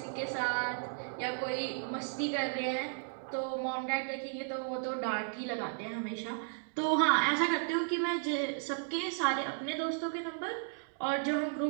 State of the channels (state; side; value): silent; left; digital silence